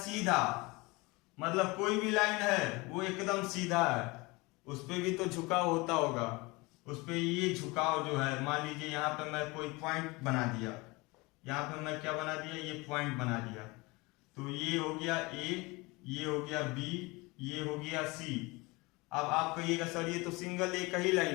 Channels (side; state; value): right; quieter; 24.4 dB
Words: सीधा, मतलब कोई भी लाइन है वो एकदम सीधा है, उस पे भी तो झुकाव होता होगा, उस पे ये झुकाव जो है, मान लीजिए यहाँ पे मैं कोई पॉइंट बना दिया, यहाँ पे मैं क्या बना दिया, ये पॉइंट बना दिया, तो ये हो गया ए, ये हो गया बी, ये हो गया सी। अब आप कहिएगा सर ये तो सिंगल एक ही